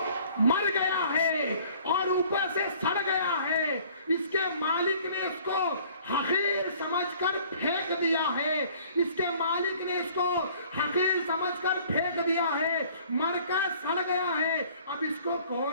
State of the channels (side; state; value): both; inverted; correlation -0.54